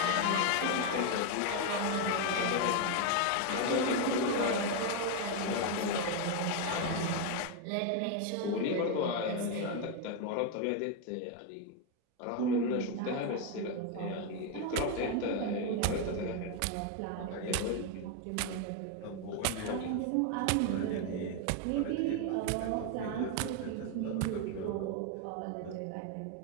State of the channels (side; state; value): both; different; correlation 0.01